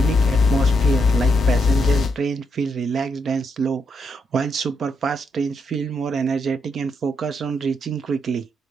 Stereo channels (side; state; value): both; normal; correlation 0.79